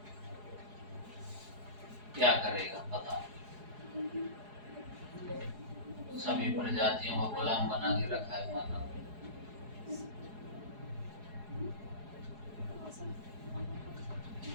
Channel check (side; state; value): left; late; 4.8 ms